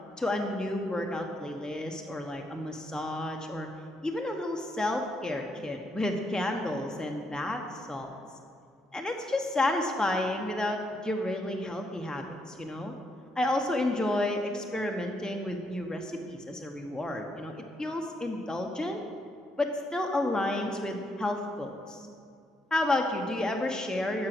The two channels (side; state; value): both; normal; correlation 0.76